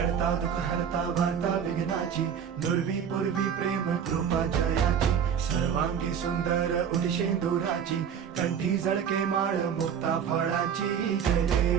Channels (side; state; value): left; quieter; 7.9 dB